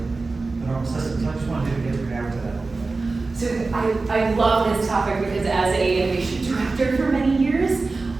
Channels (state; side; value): quieter; left; 3.7 dB